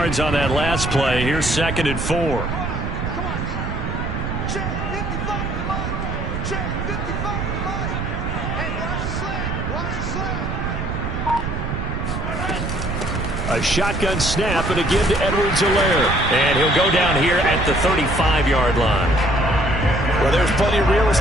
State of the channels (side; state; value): right; noise; rumble, 3 dB below the sound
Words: on that last play. Here's 2nd and 4. A shotgun snap, and again to Edwards-Helaire. And he'll go down here at the 35-yard line. Well, there's plenty of real